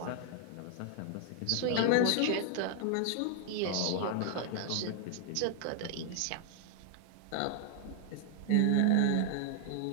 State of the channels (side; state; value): both; different; correlation 0.00